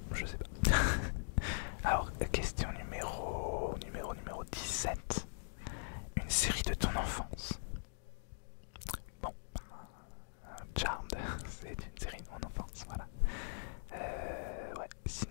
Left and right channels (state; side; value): silent; right; digital silence